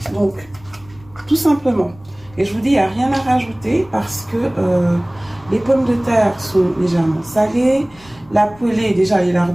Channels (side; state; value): left; noise; rumble, 25 dB below the sound